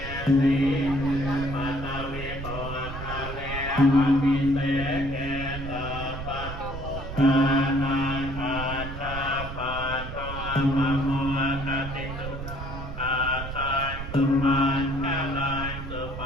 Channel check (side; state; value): right; noise; rumble, 8 dB below the sound